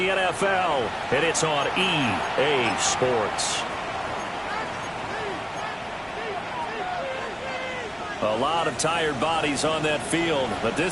and it's on EA Sports. A lot of tired bodies on that field, but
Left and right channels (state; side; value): identical; both; correlation 1.00